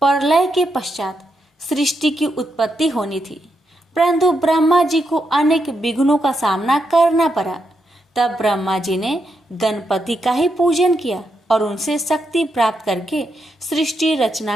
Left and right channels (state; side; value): normal; both; correlation 0.82